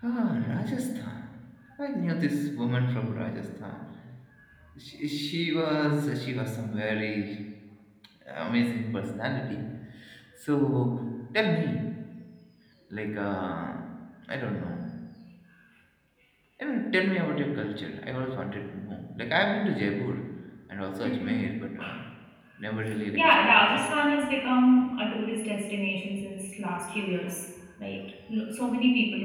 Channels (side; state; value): both; identical; correlation 1.00